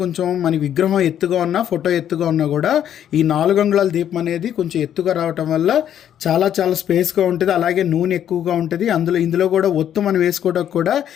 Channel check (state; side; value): quieter; right; 10.1 dB